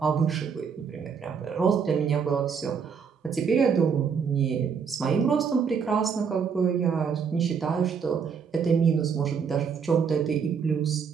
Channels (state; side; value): quieter; left; 6.4 dB